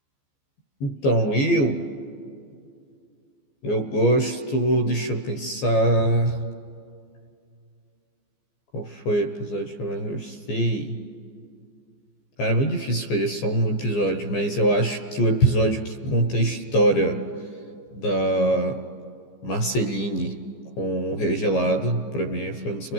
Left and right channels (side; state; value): right; late; 15 ms